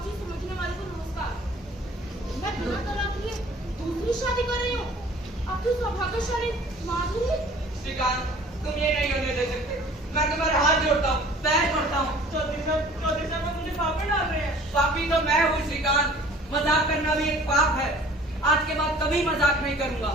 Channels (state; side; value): normal; both; correlation 0.50